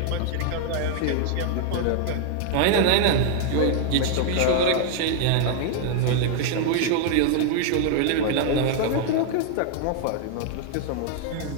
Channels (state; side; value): different; both; correlation 0.00